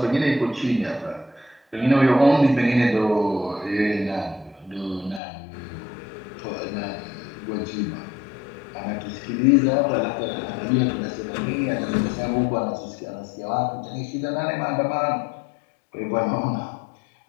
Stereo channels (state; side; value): drops out; right; at 5.2 s